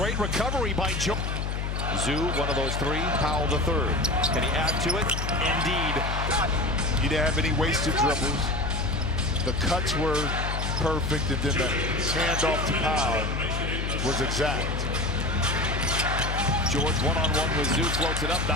recovery by George. Zoo, one of those 3. Powell the 3rd. Can he add to it? Indeed. You didn't have any wasted dribbles. The cuts were perfect, and then the handoff to Powell was exact. George one-on-one with Zoo, floats it up,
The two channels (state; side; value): noise; left; hum, 2 dB below the sound